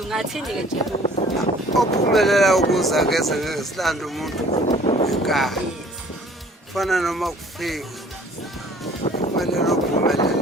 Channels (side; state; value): both; normal; correlation 0.53